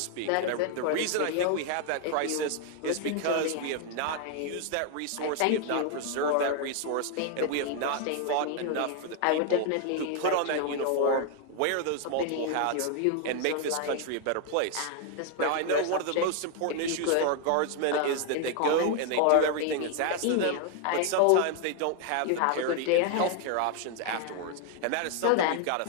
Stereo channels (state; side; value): different; both; correlation 0.00